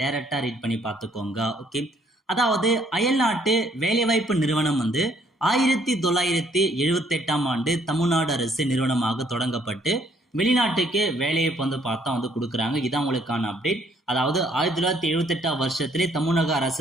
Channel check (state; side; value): normal; both; correlation 0.65